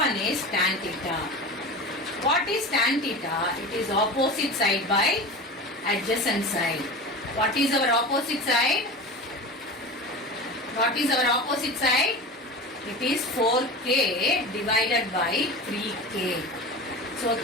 is tan theta. What is tan theta? It is opposite side by adjacent side. What is our opposite side? What is our opposite side? It is 4k divided by 3k. So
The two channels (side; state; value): both; normal; correlation 0.31